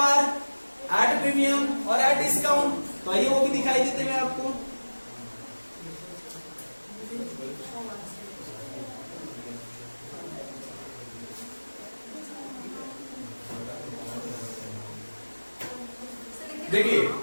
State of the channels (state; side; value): inverted; both; correlation -1.00